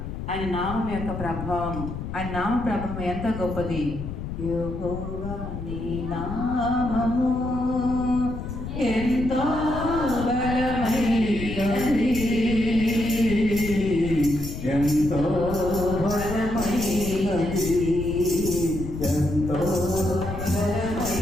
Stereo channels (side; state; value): left; noise; rumble, 7 dB below the sound